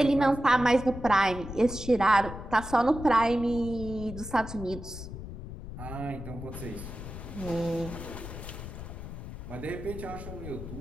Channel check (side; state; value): left; noise; rumble, 10 dB below the sound